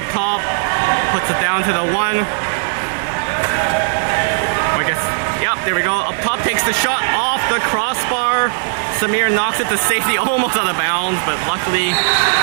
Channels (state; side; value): silent; left; 59 dB below the other